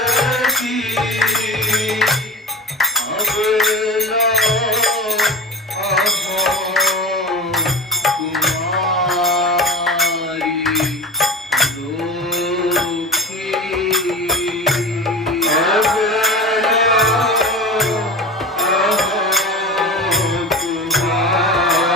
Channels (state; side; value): normal; both; correlation 0.30